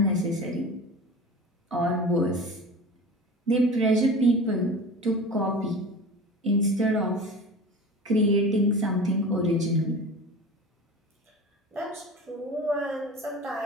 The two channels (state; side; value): normal; both; correlation 0.35